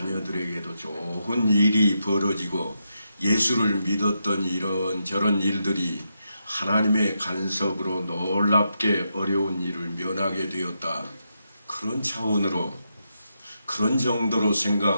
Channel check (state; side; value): inverted; both; correlation -0.84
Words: 좋은 일이 벌어지고 예수를 믿었더니 이런저런 일들이 하나님의 간섭으로 놀랍게 어려운 일을 면하게 되었다. 그런 차원으로 그런 정도로